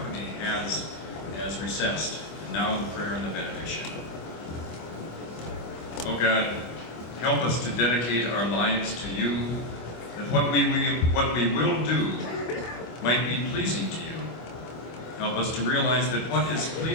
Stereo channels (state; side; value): late; right; 25 ms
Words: has recessed. And now the prayer and the benediction. Oh God, help us to dedicate our lives to you, that what we will do might be pleasing to you. Help us to realize that what is